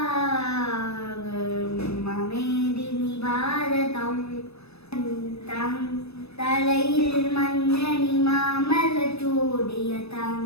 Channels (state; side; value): late; right; 0.79 ms